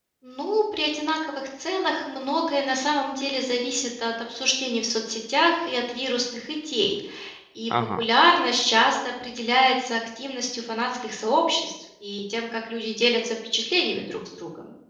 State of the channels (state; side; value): identical; both; correlation 1.00